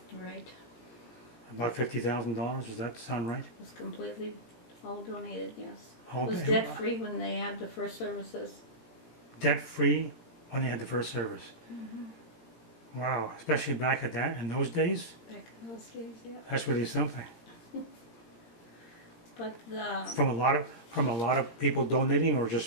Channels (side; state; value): right; late; 17 ms